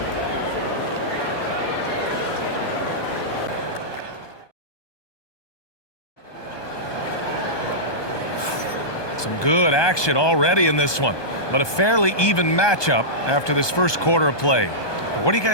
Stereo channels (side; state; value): right; late; 1.2 ms